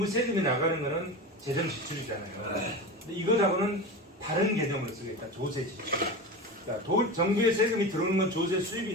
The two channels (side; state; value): both; normal; correlation 0.27